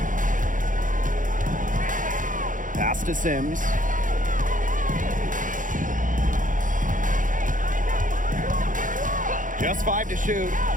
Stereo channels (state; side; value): late; left; 0.38 ms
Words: Pass to Sims. Just 5 to shoot.